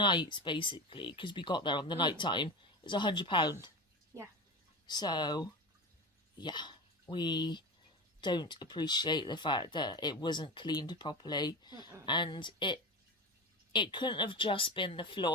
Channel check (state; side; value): normal; both; correlation 0.24